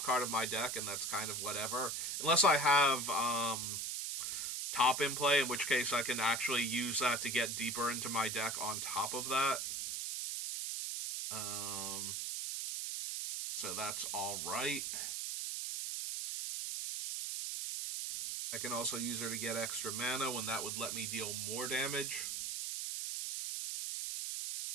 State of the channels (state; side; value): noise; right; hiss, 2 dB below the sound